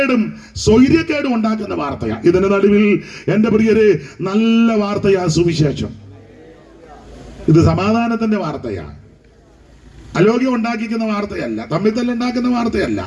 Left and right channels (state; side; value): identical; both; correlation 1.00